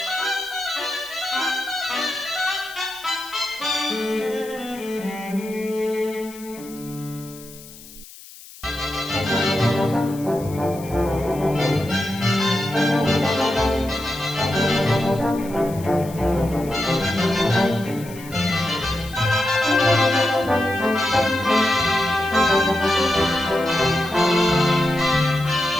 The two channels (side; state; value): left; noise; hiss, 18 dB below the sound